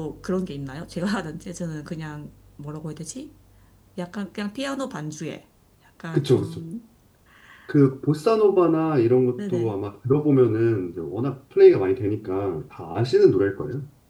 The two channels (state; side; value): identical; both; correlation 1.00